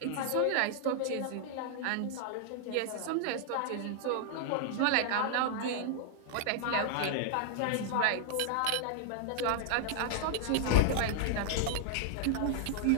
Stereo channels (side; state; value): both; different; correlation 0.00